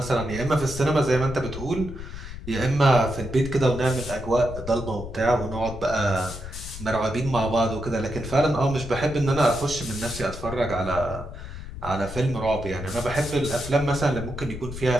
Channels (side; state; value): left; noise; rumble, 11 dB below the sound